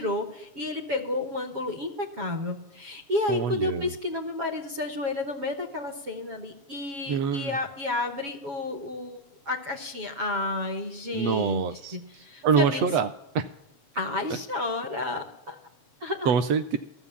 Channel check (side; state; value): left; late; 7.2 ms